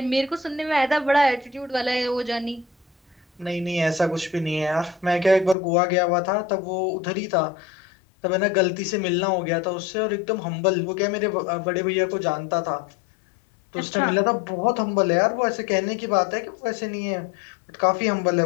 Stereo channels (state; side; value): drops out; right; at 5.6 s